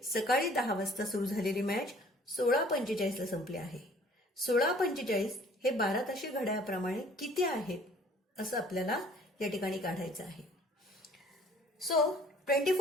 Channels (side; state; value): both; normal; correlation 0.54